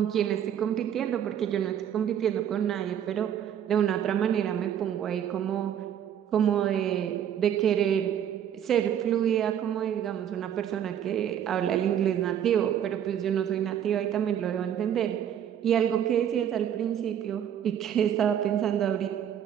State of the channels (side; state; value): left; quieter; 9.6 dB